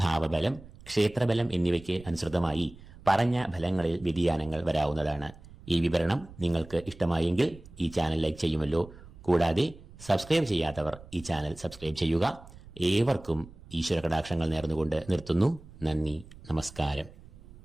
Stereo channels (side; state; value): right; noise; rumble, 19 dB below the sound